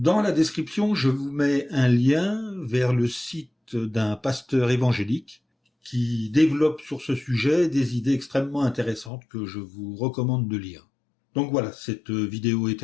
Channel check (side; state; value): right; drops out; at 9.1 s